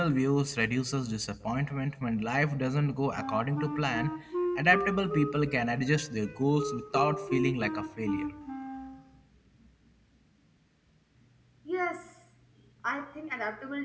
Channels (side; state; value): both; identical; correlation 1.00